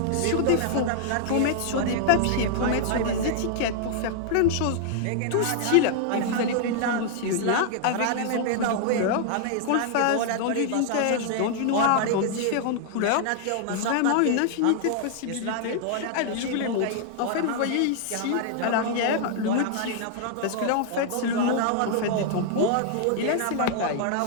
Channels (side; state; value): both; different; correlation -0.01